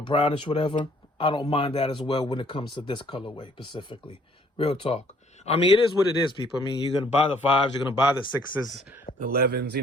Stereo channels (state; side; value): normal; both; correlation 0.61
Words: brownish, whatever, I don't mind that as well when it comes to this colorway specifically. Real talk. I mean, it is what it is, people. I mean, you're going to buy the 5s, you're going to buy the 6s, the 11s,